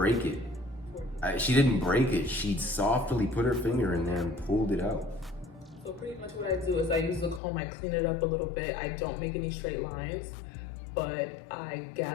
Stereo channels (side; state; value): right; drops out; at 7.4 s